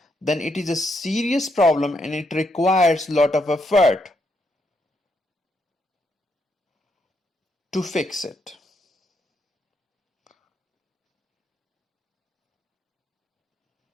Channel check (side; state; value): both; normal; correlation 0.78